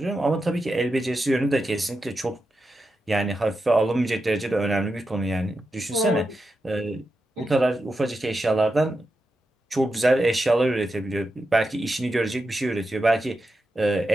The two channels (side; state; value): both; normal; correlation 0.88